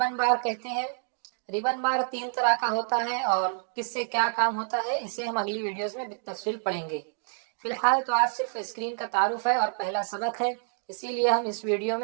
بار کہتے ہیں۔ ریبن بار 3 طرح کا ہوتا ہے اور کس سے کیا کام ہوتا ہے اسے ہم اگلی ویڈیوز میں بالتفصیل پڑھیں گے۔ فی الحال تو آج صرف اسکرین کا تعارف ہے اور پہلا سبق ہے، اسی لیے ہم اس ویڈیو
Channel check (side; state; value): left; silent; 59 dB below the other